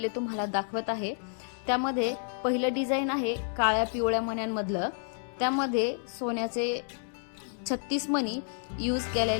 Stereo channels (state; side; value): silent; right; digital silence